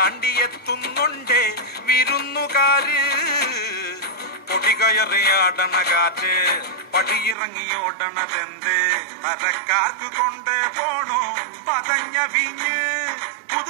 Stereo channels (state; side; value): drops out; left; at 7.4 s